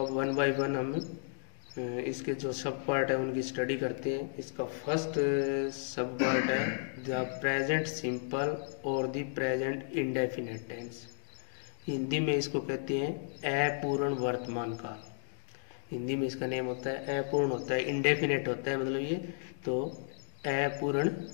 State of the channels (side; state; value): right; silent; digital silence